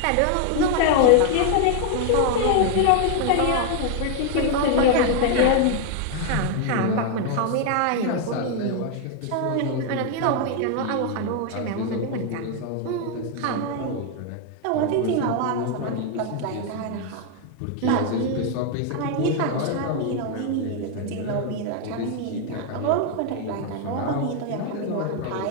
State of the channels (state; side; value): different; both; correlation 0.00